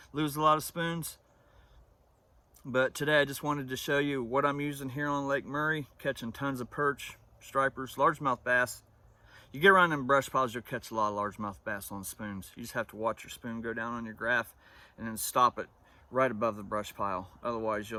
a lot of spoons. But today I just wanted to show you what I'm using here on Lake Murray, catching tons of perch, stripers, largemouth bass. You get around them brush piles, you'll catch a lot of largemouth bass on spoons. You just have to watch your spoon go down on your graph and then stop it right above the brush pile. Otherwise,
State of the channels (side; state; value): both; identical; correlation 1.00